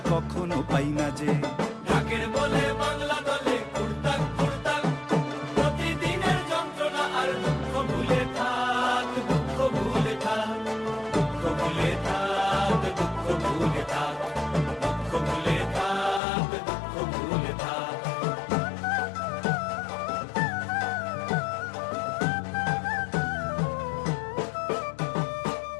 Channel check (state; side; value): drops out; right; at 16.2 s